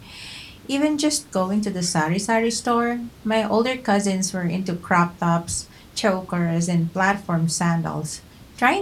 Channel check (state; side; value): identical; both; correlation 1.00